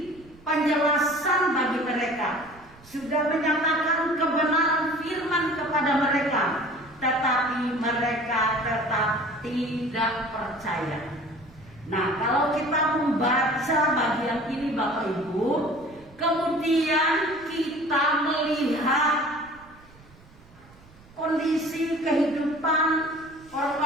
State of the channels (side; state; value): right; noise; rumble, 25 dB below the sound